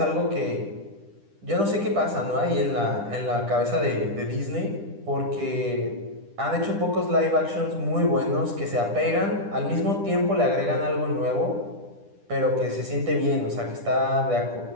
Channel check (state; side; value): late; left; 10 ms